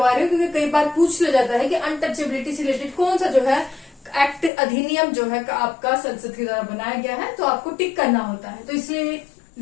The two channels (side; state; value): right; drops out; at 4.5 s